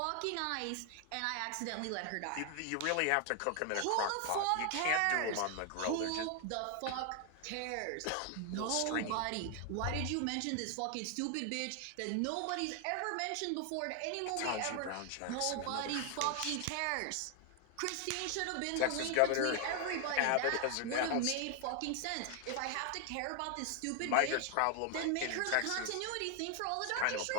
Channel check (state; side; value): different; both; correlation 0.00